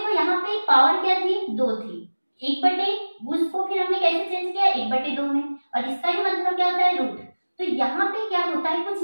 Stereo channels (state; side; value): inverted; both; correlation -1.00